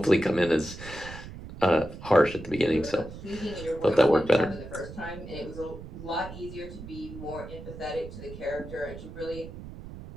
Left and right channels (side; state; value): right; noise; rumble, 12 dB below the sound